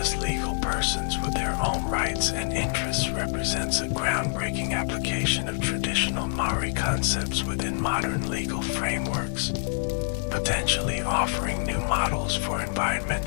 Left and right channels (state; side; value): silent; right; digital silence